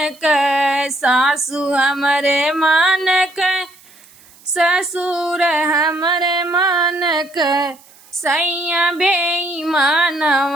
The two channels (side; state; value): right; noise; hiss, 26 dB below the sound